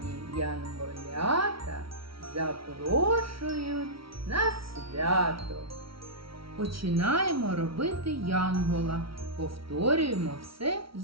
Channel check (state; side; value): late; left; 0.75 ms